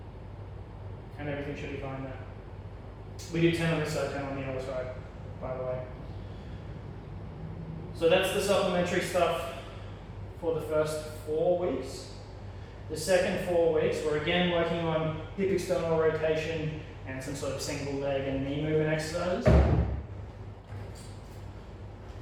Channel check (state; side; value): identical; both; correlation 1.00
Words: and everything should be fine there. We do 10 on this side, 10 on the other side, by the way. So that's the supplementary stuff for the first 4 weeks. The second 4 weeks, we're again working on hip external rotation and some sort of single leg and knee movement exercises.